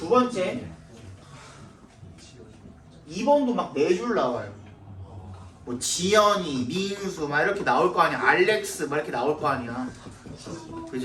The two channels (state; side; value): identical; both; correlation 1.00